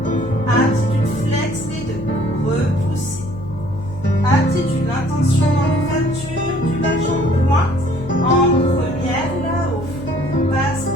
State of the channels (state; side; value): noise; left; hum, 13 dB below the sound